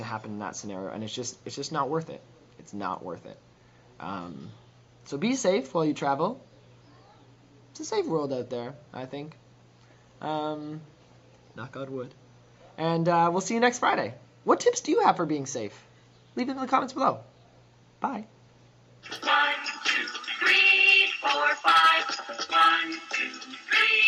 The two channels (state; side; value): identical; both; correlation 1.00